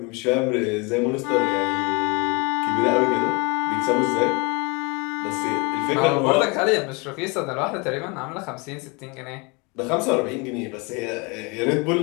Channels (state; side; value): quieter; right; 29.3 dB